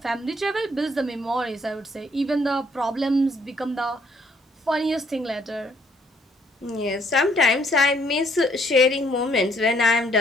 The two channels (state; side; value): normal; both; correlation 0.67